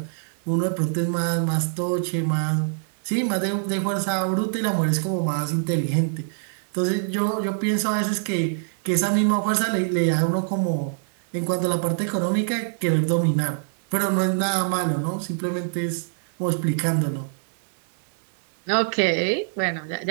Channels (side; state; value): left; silent; 62 dB below the other